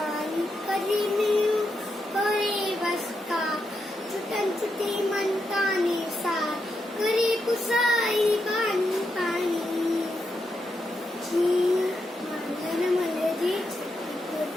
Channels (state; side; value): normal; both; correlation 0.84